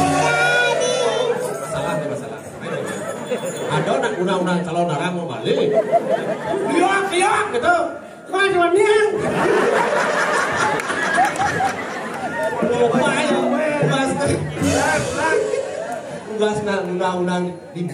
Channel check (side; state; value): both; identical; correlation 1.00